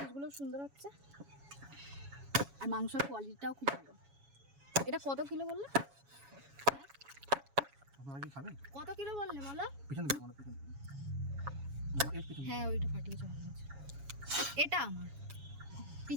সুন্দর হচ্ছে, আর মাংসের কোয়ালিটিটাও খুব ভালো। এটা কত কিলো বললে? আপনারা কি খাবেন? কত কিলো বললে বলো? পিছন দিকে বলো, পিছন দিকে। হ্যাঁ ওইটা ফাটিয়েছে ভালো আছে। এটা আমার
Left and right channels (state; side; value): late; left; 7.2 ms